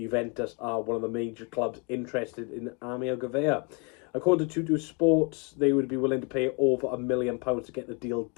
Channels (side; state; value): right; quieter; 34.2 dB